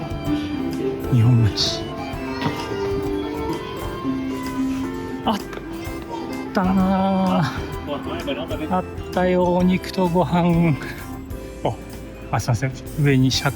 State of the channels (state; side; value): identical; both; correlation 1.00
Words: 日本町。あったなー。あったよ、お肉とご飯。すいません。上にシャ